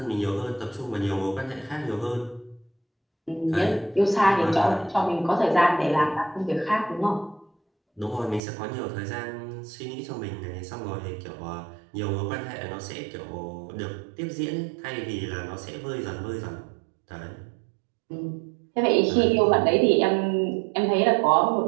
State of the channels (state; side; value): drops out; left; at 8.4 s